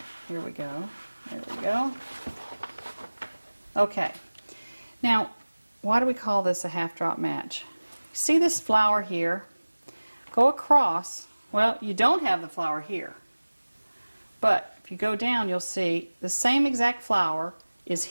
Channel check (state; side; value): inverted; both; correlation -1.00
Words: Here we go. There we go. Okay. Now, why do we call this a half drop match? See this flower here? Go across. Well, you don't have the flower here. But if you go down, you'll see the same exact flower is